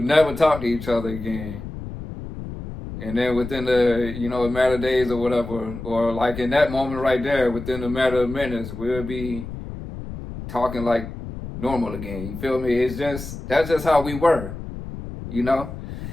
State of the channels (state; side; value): noise; left; rumble, 10 dB below the sound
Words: never talk to each other again. And then within the, you know, a matter of days or whatever, or like in that moment right there, within a matter of minutes, we'll be talking like normal again. You feel me? That's just how we were, you know?